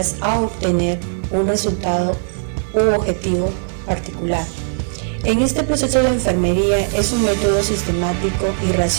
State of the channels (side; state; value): left; silent; 60 dB below the other